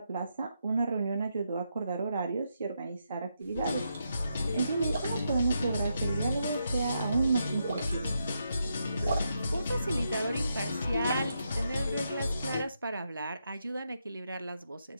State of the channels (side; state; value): both; inverted; correlation -0.82